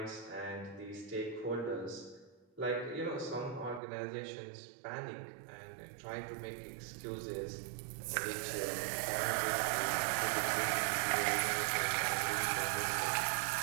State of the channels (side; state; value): left; drops out; at 3.8 s